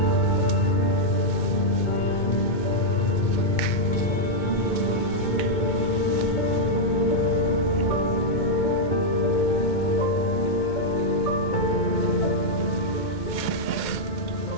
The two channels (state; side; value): late; right; 2.2 ms